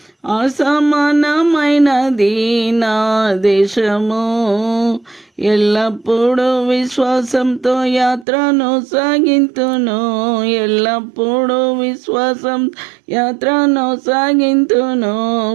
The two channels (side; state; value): left; drops out; at 8.2 s